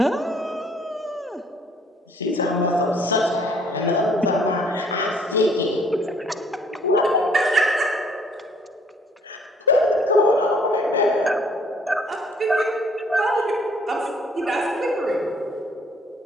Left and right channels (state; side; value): normal; both; correlation 0.61